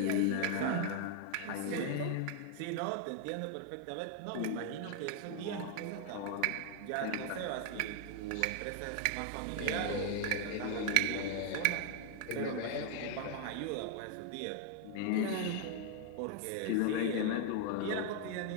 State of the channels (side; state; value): both; different; correlation 0.00